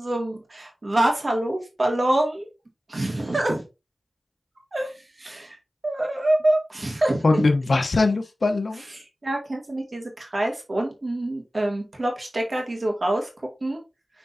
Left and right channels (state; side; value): normal; both; correlation 0.96